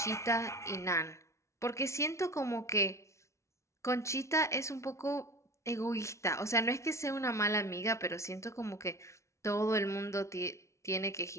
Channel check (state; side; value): late; right; 0.14 ms